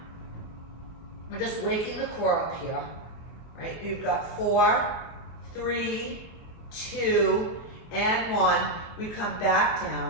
We're just waking the core up here, right? You've got 4, 3, 2, and 1. We come back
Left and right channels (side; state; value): right; late; 24 ms